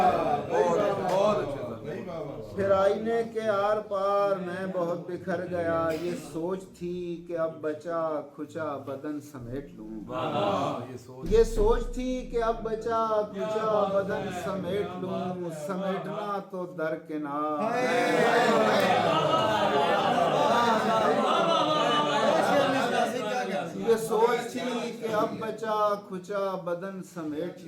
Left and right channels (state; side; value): identical; both; correlation 1.00